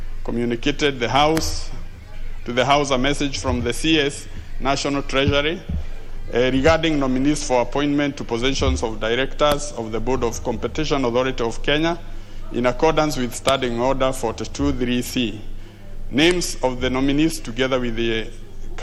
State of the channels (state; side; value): identical; both; correlation 1.00